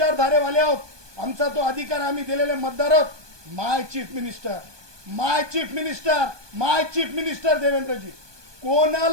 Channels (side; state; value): left; late; 1.2 ms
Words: आहोत. आमचा तो अधिकार आम्ही दिलेले मतदार आहोत. माय चीफ मिनिस्टर, माय चीफ मिनिस्टर, माय चीफ मिनिस्टर देवेंद्रजी,